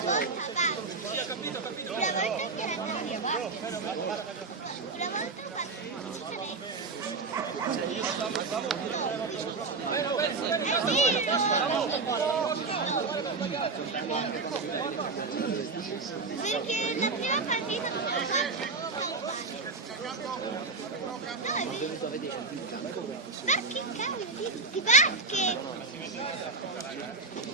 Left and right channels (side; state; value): left; quieter; 4.1 dB